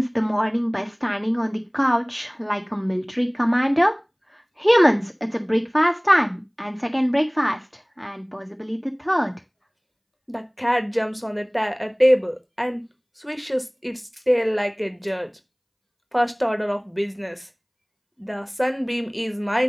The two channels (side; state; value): both; identical; correlation 1.00